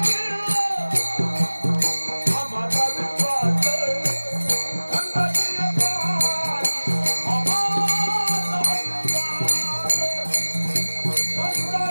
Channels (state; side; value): inverted; both; correlation -1.00